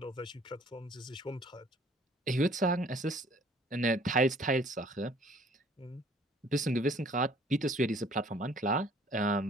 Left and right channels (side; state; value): both; normal; correlation 0.55